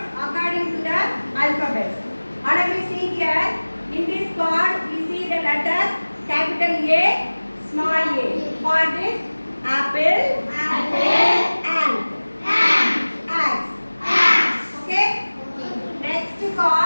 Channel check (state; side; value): inverted; both; correlation -1.00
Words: according to the alphabet. All of you see here, in this card we see the letter capital A, small a. For this, apple, ant, axe. Okay? Next